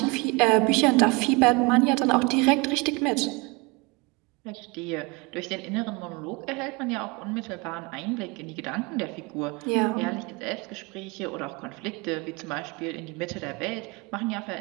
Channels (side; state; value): left; quieter; 27.1 dB